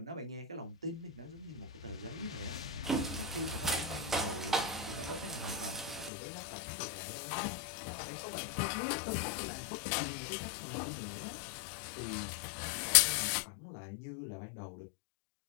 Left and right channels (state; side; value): drops out; right; at 6.1 s